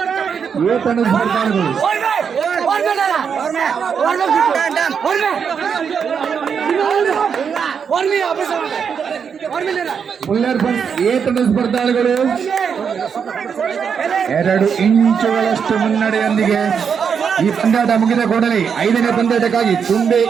ಎ ತಂಡದ ಸ್ಪರ್ಧಾಳುಗಳು. ಮುಲ್ಲರ್ ಫ್ರೆಂಡ್ಸ್ ಎ ತಂಡದ ಸ್ಪರ್ಧಾಳುಗಳು 2 ಇಂಚುಗಳಷ್ಟು ಮುನ್ನಡೆಯೊಂದಿಗೆ ಈ ಪಂದ್ಯಾಟ ಮುಗಿದ ಕೂಡಲೇ 5ನೇ ಪಂದ್ಯಾಟಕ್ಕಾಗಿ ತುಂಬೆ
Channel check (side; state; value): left; quieter; 6.8 dB